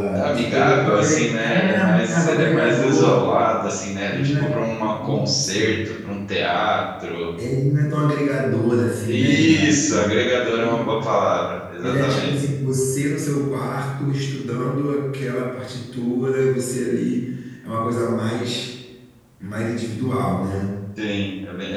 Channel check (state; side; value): identical; both; correlation 1.00